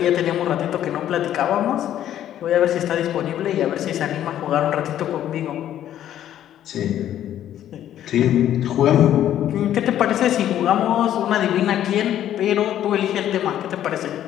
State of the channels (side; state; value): right; quieter; 11.4 dB